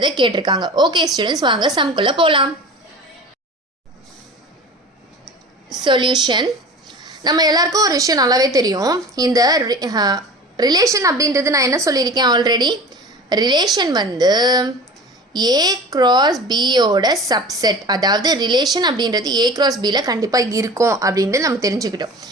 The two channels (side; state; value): both; normal; correlation 0.37